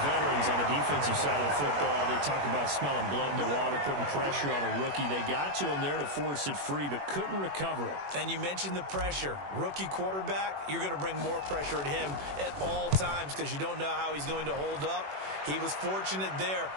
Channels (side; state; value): left; late; 21 ms